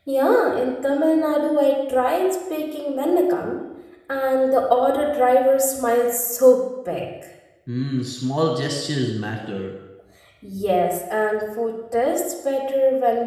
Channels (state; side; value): identical; both; correlation 1.00